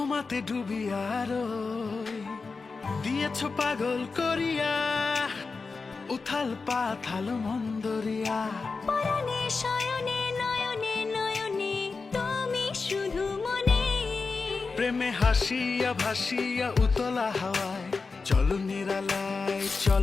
ডুবিয়া রই দিয়েছ পাগল করিয়া উথাল পাথাল মন্দরিয়া। পরাণে শয়নে নয়নে নয়নে তুমি শুধু মনে। প্রেমে হাসিয়া ভাসিয়া উতলা হাওয়ায় চলো নিরালায়,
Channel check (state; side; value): quieter; right; 4.4 dB